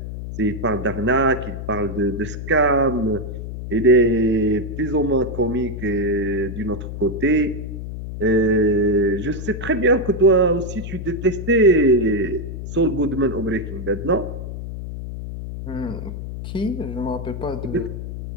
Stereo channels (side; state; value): left; noise; hum, 8 dB below the sound